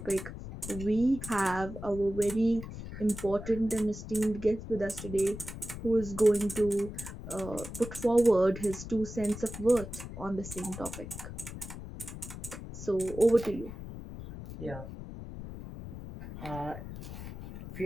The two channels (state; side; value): noise; left; rumble, 10 dB below the sound